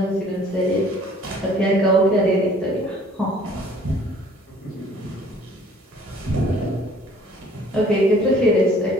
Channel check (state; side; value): normal; both; correlation 0.54